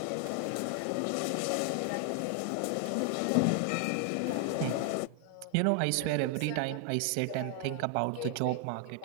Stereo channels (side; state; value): both; different; correlation 0.00